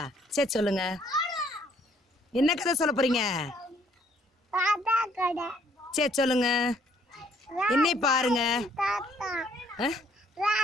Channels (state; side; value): normal; both; correlation 0.65